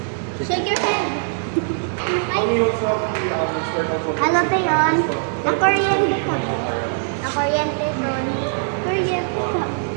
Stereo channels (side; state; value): left; silent; digital silence